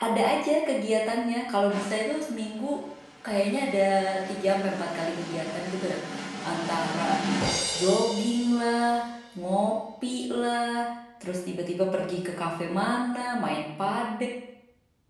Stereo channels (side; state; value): both; identical; correlation 1.00